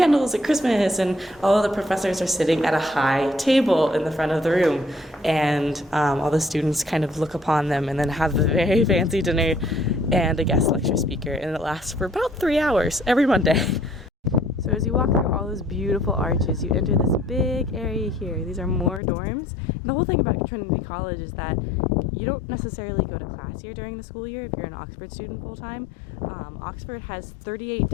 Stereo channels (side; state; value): right; drops out; at 19.0 s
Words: at Christmas and all of the professors are sitting at a high table in the front of the room, and all the students kind of look upon them and then have a very fancy dinner and a guest lecture speaker, and it lasts for about 3 hours every Monday. So as you walk through all those beautiful arches, you enter this big area here. These are more dorms. And the whole thing about Trinity College is that you don't necessarily go to class here during the school year if you're an Oxford student full-time. Oxford has 38